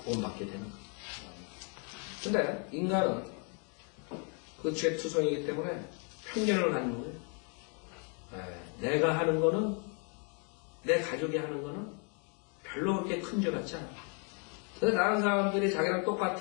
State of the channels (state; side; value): quieter; right; 38.6 dB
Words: 되는 거예요. 근데 인간은 그 죄투성이기 때문에 편견을 갖는 거예요. 내가 하는 거는 내 가족이 하는 거는 별로 그렇게 큰 죄 같지 않아. 근데 다른 사람들이 자기랑